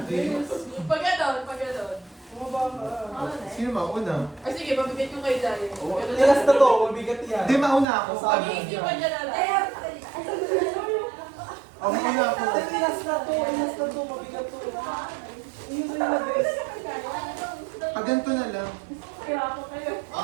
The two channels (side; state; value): left; drops out; at 7.9 s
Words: Pag ganon, pag ganon. Sino mauna? Ay sige, mabigay ko kay Jaya. Tilas na to, mabigat yan. Hindi, mauna ako. Pag-iisipan niya na lang. Ako mauna ako. Tilas na to, mabigat to. Yun na yung best. Pag ganito na lang. Kaya ako kayo.